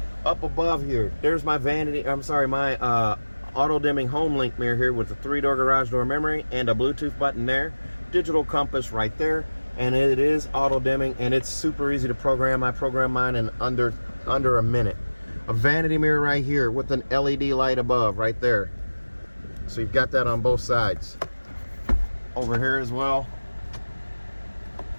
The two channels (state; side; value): inverted; both; correlation -1.00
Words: Up above here, there's my auto dimming home link mirror here with a 3-door garage door memory and a Bluetooth button there. Digital compass right there, and it is auto dimming, and it's super easy to program. I programmed mine in under a minute. A vanity mirror right here with an LED light above right there. So you've got that on both sides. Over here as well.